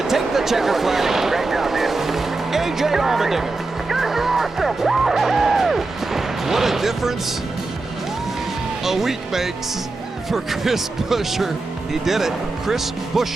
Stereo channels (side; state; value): left; quieter; 3.4 dB